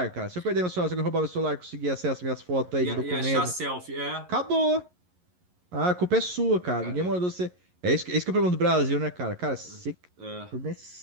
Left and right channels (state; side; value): late; left; 11 ms